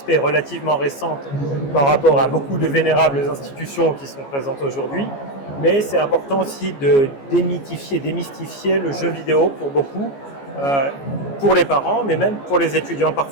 est relativement récente par rapport à beaucoup de vénérables institutions qui sont présentes aujourd'hui. Mais c'est important aussi de démystifier le jeu vidéo pour beaucoup, pour les parents, mais même pour les étudiants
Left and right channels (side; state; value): right; late; 14 ms